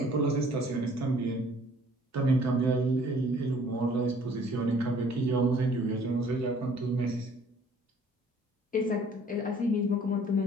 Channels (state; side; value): normal; both; correlation 0.57